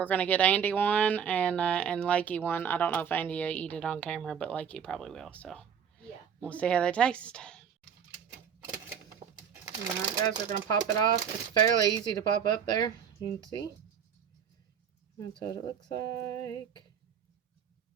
gonna get Andy one and Lakey one. I don't know if Andy will eat it on camera, but Lakey probably will. So yeah, we'll see how they taste. All right, guys, we're gonna pop it off. It's fairly easy to pop up there. You can see. That's what it looks like.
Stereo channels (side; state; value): left; quieter; 7.7 dB